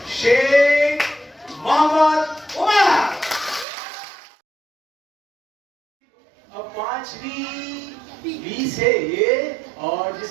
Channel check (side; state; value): left; drops out; at 3.7 s